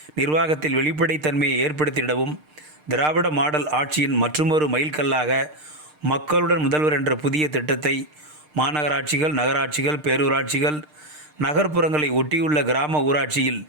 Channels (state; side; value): late; left; 6.6 ms